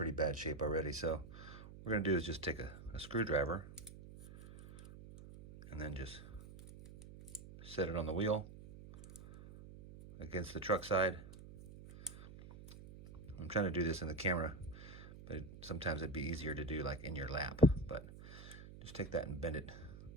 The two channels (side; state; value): right; noise; hum, 15 dB below the sound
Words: bad shape already. So what we're gonna do is just take a screwdriver and then just set it on the wheel against the truck side. I'm trying to do this in the camera, but sometimes it'd be easier to do like in your lap. But just take that and bend it